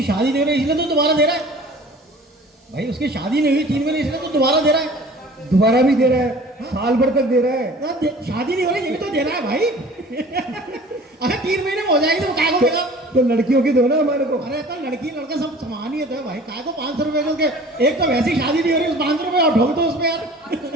शादी नहीं हो रही इसलिए तो दोबारा दे रहा है। भाई उसकी शादी नहीं हुई 3 महीने इसलिए तो दोबारा दे रहा है, दोबारा भी दे रहा है, साल भर तक दे रहा है। शादी नहीं हो रही ये तो दे रहा है भाई। अगर 3 महीने में हो जाएगी तो काय को देगा? तो लड़कियों की दो ना हमारे को। अरे तो लड़की लड़का सब समान ही है भाई, काय को 500 रुपए के? एक तो वैसी शादी नहीं हो रही, उस 500 रुपए और ढोल दो उसमें यार।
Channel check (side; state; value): both; normal; correlation 0.46